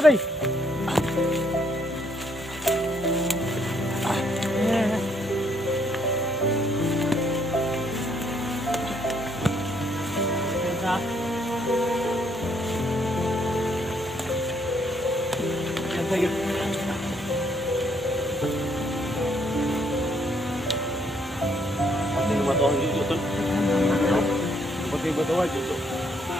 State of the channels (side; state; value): both; normal; correlation 0.70